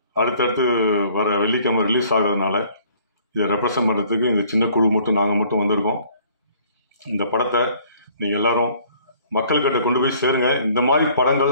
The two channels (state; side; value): inverted; both; correlation -0.57